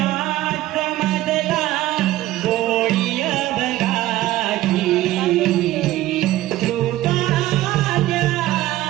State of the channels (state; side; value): quieter; left; 15.5 dB